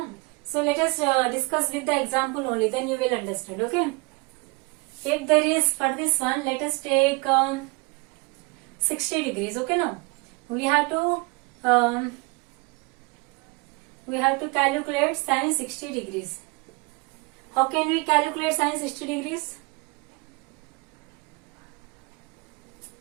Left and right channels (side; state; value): left; quieter; 27.9 dB